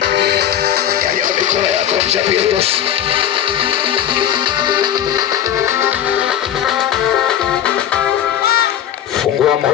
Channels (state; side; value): quieter; right; 10.4 dB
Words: Nyanyua mikono yako, mchapie Yesu. Fungua